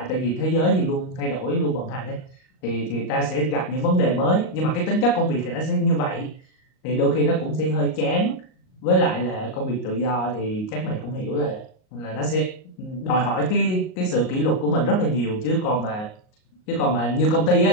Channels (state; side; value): late; right; 38 ms